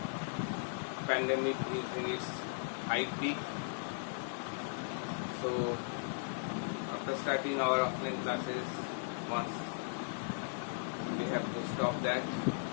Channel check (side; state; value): right; silent; digital silence